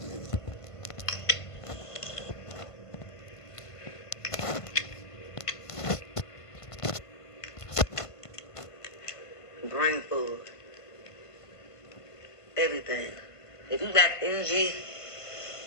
Brain food. Everything. If you got energy,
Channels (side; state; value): right; late; 1.5 ms